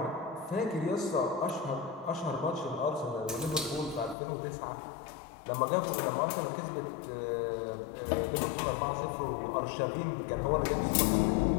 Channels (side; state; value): right; drops out; at 4.2 s